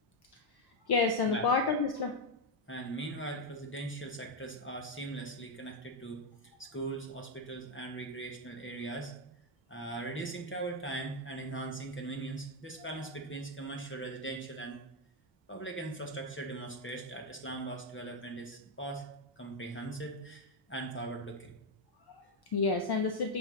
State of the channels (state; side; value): normal; both; correlation 0.04